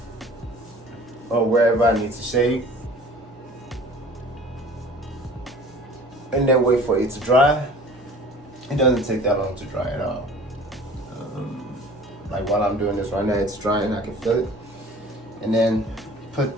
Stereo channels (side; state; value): both; normal; correlation 0.46